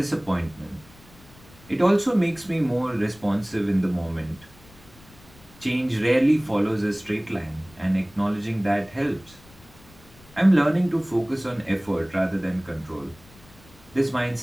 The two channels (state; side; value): noise; left; rumble, 24 dB below the sound